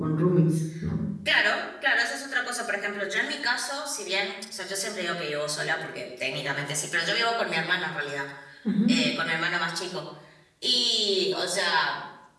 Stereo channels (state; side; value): identical; both; correlation 1.00